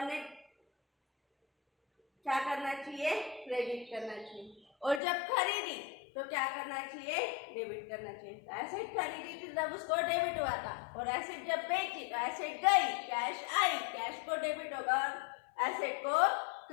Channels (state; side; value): drops out; right; at 5.0 s